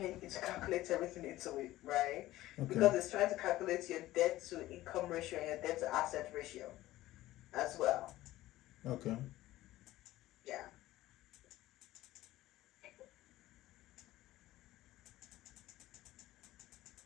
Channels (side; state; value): right; quieter; 16.0 dB